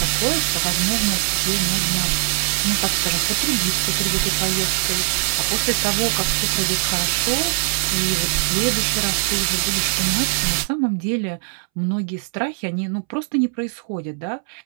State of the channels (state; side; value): silent; left; 64 dB below the other